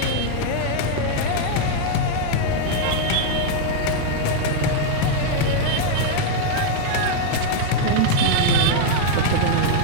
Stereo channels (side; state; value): both; different; correlation 0.00